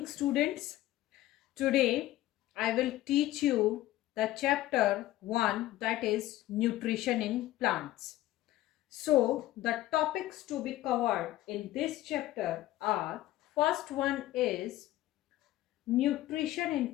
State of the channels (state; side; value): quieter; right; 15.5 dB